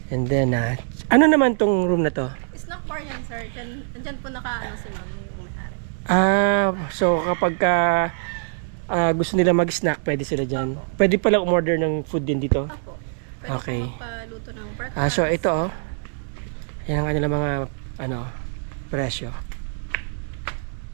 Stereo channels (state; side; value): silent; left; digital silence